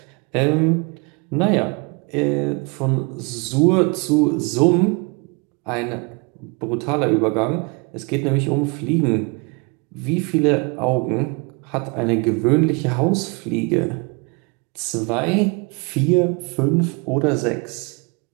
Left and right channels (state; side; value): quieter; left; 30.8 dB